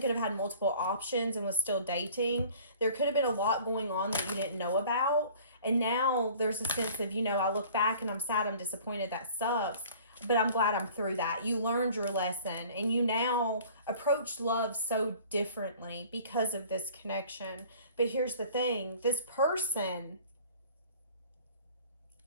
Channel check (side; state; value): both; inverted; correlation -0.49